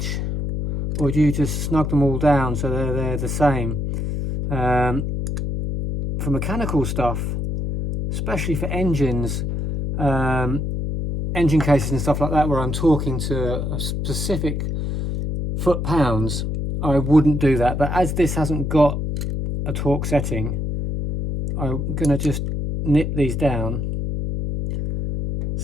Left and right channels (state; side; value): noise; left; hum, 2 dB below the sound